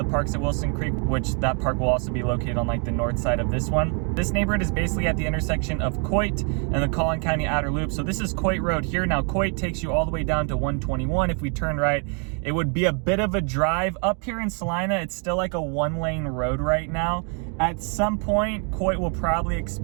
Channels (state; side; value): quieter; left; 39.4 dB